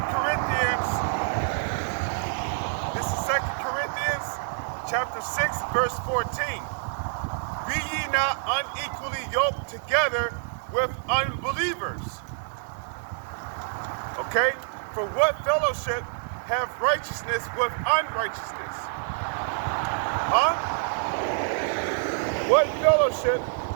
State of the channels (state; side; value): silent; left; digital silence